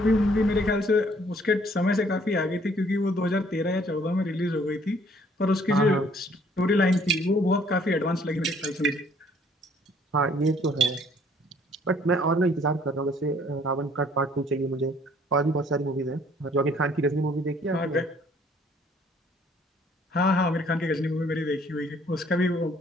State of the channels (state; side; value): normal; both; correlation 0.60